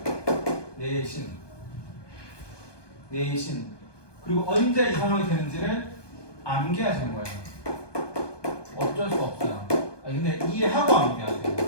내신 그리고 언제 이 상황이 되는지를 암기하시는 거예요. 어쩔 수 없어요. 근데 이해하고 암기하세요.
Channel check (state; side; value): late; right; 1.2 ms